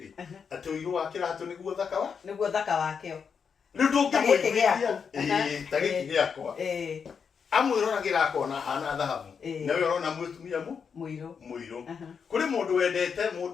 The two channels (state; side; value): quieter; right; 6.4 dB